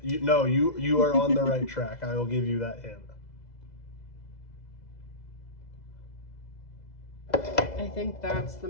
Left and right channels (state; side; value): late; right; 2.0 ms